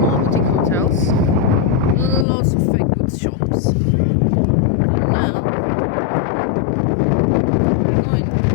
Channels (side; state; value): right; drops out; at 2.2 s